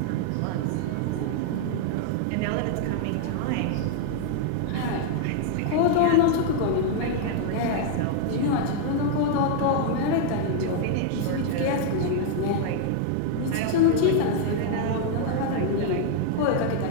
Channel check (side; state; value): both; different; correlation 0.00